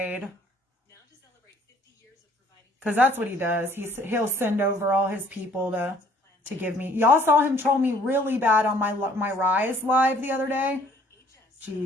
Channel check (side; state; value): both; normal; correlation 0.58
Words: Because that's what he does. He'll send over all his people to give me. Y'all saw him troll me really bad on my Rise live the other day.